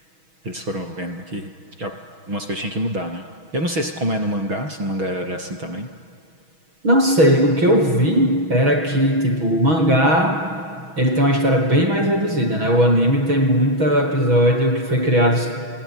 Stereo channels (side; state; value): left; late; 6.2 ms